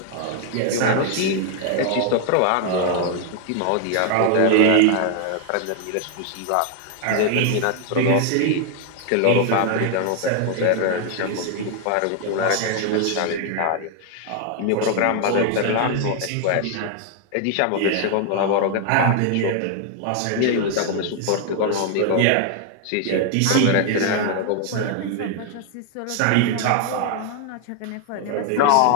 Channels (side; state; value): both; different; correlation 0.00